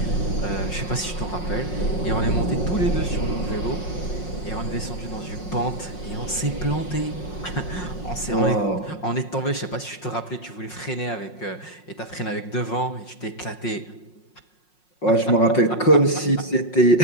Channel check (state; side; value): late; right; 5.5 ms